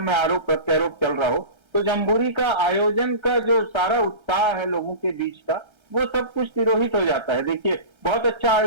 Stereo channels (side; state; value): left; late; 1.3 ms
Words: में आरोप प्रत्यारोप चल रहा हो, तो जम्बूरी का आयोजन का जो सारा उत्साह है लोगों के बीच का, वो सब कुछ तिरोहित हो जाता है। देखिए, बहुत अच्छा